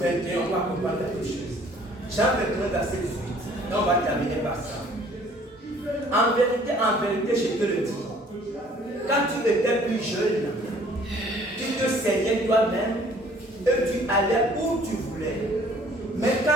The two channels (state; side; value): normal; both; correlation 0.56